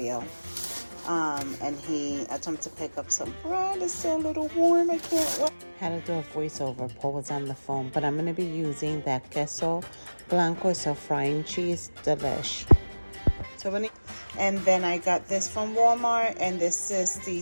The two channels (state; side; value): inverted; both; correlation -1.00